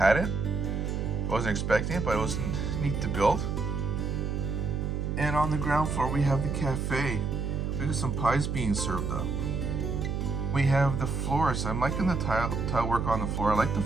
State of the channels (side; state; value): right; noise; hum, 1 dB below the sound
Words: it. I wasn't expecting it, but it was neat to build. And on the ground floor we have the cafe. We got some pies being served up. We have the floors. I'm liking the tile work on the floor. I like the